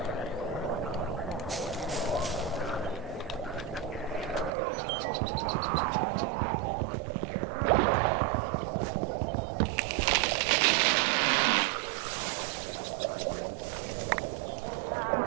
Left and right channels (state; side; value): drops out; left; at 4.5 s